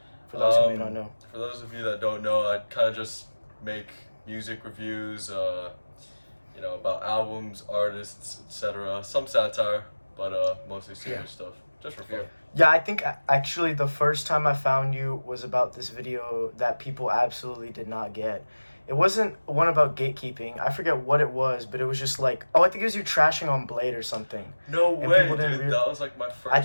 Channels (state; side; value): inverted; both; correlation -1.00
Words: for those who may not know. For those of you that don't know, I kind of just make music reviews, about albums, artists, etc. Some satire, but mostly serious stuff, just for fun. Yeah, I think actually the first time I found you was about this video that people absolutely did not get. It wasn't one about gatekeeping. I forget what it was, but it was just like, I think it was you trashing on Bladee or something. No And way, people didn't dude. That was like my